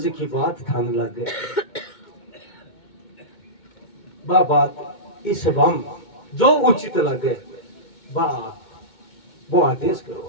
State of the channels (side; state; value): right; late; 2.2 ms